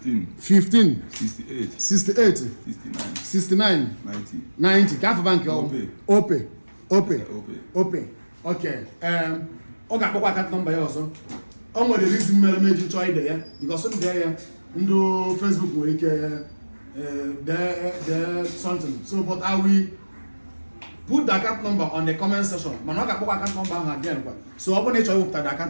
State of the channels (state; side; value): inverted; both; correlation -1.00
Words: 68 69 90. Calf bank open. Okay. Okay, account number here also. The reason me join there because some there no Facebook will there something. So but I will put the account number on the comment section. But not account number again. So I want to show the